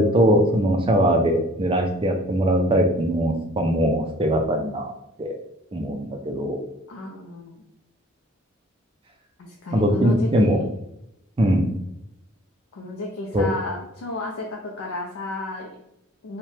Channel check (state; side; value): normal; both; correlation 0.54